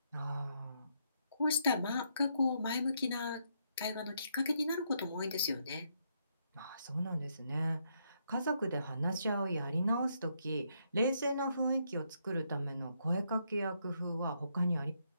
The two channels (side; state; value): both; inverted; correlation -0.76